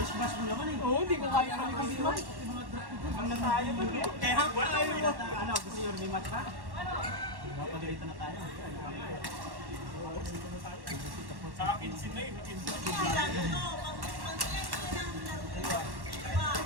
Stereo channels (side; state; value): left; late; 1.1 ms